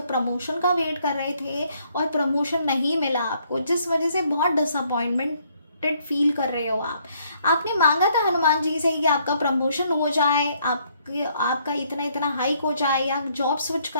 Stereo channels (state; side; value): inverted; both; correlation -0.68